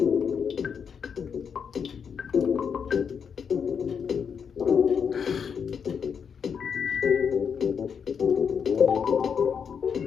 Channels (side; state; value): right; quieter; 6.8 dB